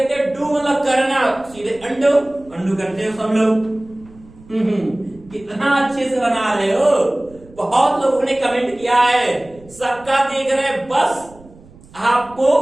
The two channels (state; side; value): noise; right; rumble, 24 dB below the sound